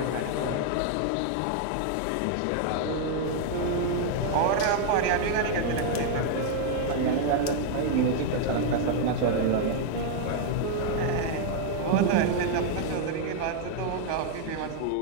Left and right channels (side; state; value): both; different; correlation 0.00